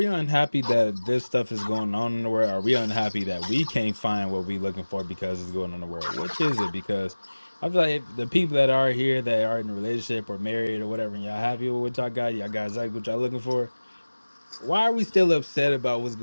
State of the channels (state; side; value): inverted; both; correlation -1.00